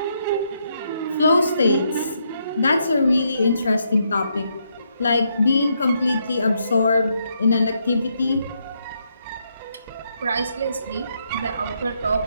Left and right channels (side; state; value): both; inverted; correlation -0.77